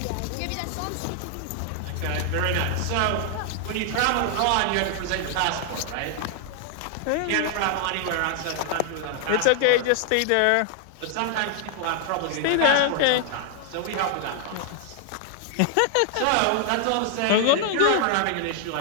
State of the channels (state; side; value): different; both; correlation 0.00